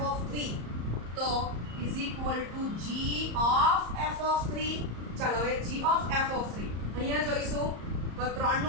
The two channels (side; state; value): left; late; 34 ms